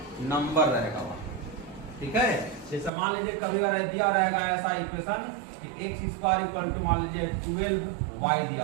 नंबर रहेगा वहां, ठीक है। जैसे मान लीजिए कभी दिया रहेगा ऐसा इक्वेशन कि x स्क्वायर इक्वल टू मान लीजिए 12y दिया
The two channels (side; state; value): left; drops out; at 2.9 s